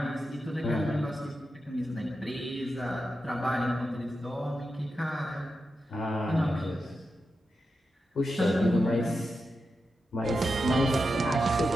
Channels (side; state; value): both; normal; correlation 0.89